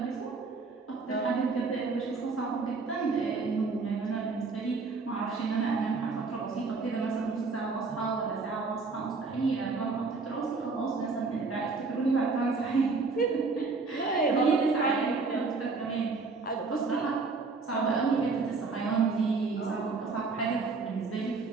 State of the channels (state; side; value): quieter; left; 4.2 dB